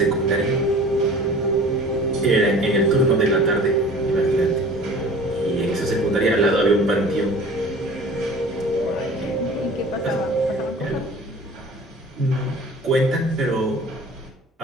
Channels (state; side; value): normal; both; correlation 0.43